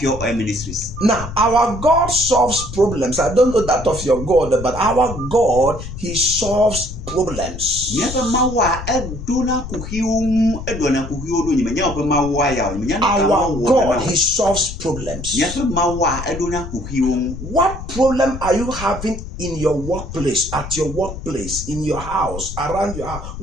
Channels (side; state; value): left; noise; rumble, 9 dB below the sound